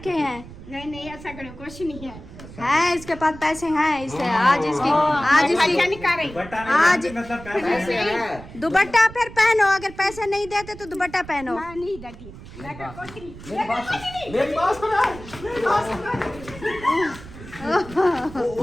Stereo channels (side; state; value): right; noise; rumble, 16 dB below the sound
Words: हैं। नहीं, ऐसा करो, कुछ नहीं है। इसके पास पैसे हैं। इसे आज इसकी दुपट्टा नहीं आज पहनते, मतलब पैसे पैसे हैं। हैं। दुपट्टा फिर पहनो। अगर पैसे नहीं देते तो दुपट्टा पहनो। मेरी बात मेरी बात सुनो।